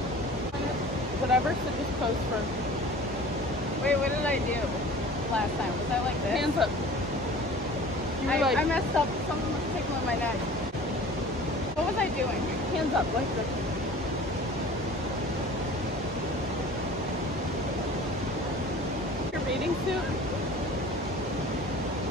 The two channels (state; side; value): normal; both; correlation 0.43